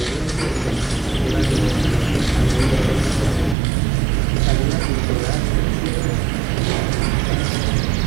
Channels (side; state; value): left; drops out; at 3.6 s